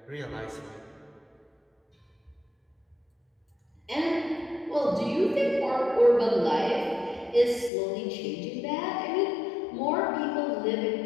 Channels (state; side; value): drops out; right; at 7.7 s